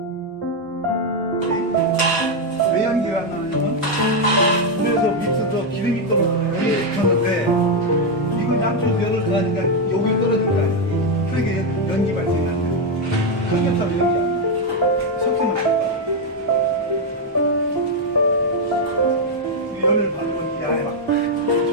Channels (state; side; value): normal; both; correlation 0.03